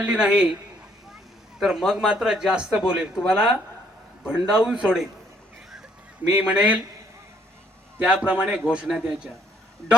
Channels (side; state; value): both; normal; correlation 0.67